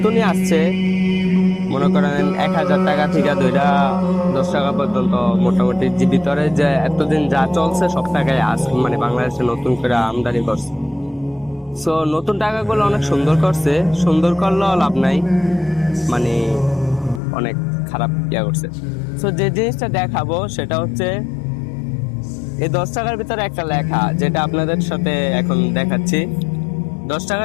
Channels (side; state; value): right; drops out; at 17.2 s